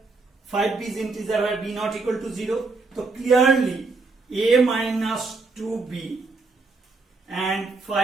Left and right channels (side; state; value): left; quieter; 3.8 dB